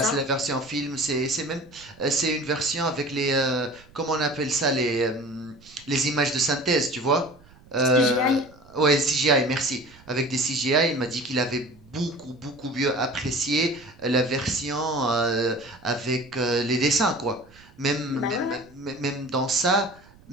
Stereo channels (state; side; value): noise; right; rumble, 25 dB below the sound